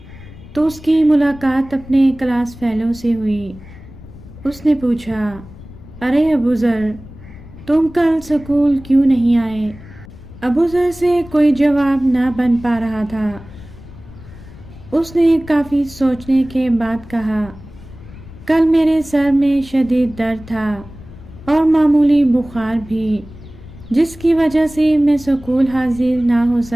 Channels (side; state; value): left; noise; rumble, 18 dB below the sound